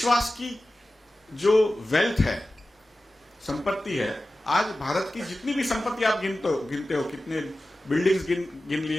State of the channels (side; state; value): both; normal; correlation 0.95